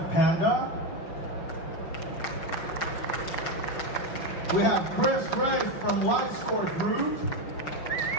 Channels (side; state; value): right; late; 5.9 ms